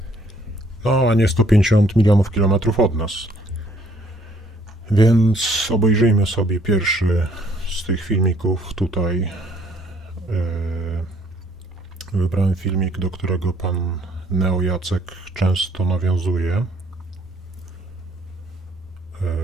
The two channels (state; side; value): normal; both; correlation 0.63